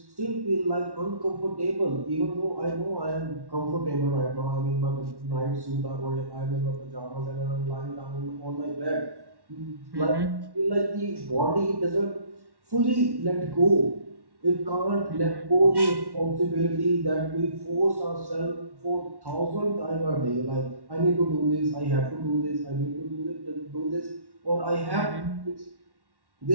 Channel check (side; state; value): left; late; 1.1 ms